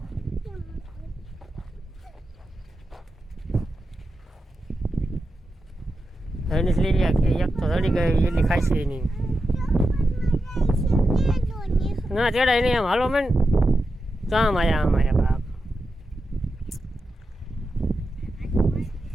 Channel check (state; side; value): normal; both; correlation 0.89